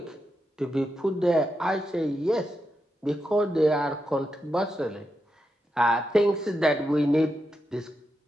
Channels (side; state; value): both; normal; correlation 0.86